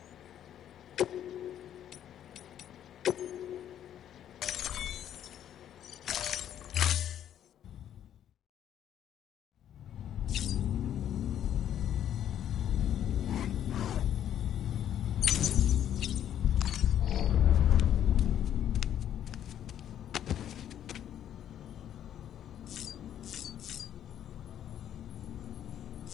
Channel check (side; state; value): right; quieter; 10.4 dB